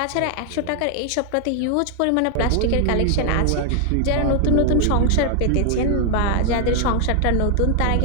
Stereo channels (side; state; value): both; different; correlation 0.00